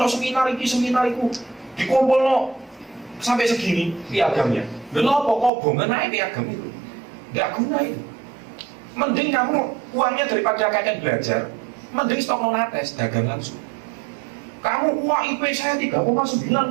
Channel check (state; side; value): drops out; left; at 5.5 s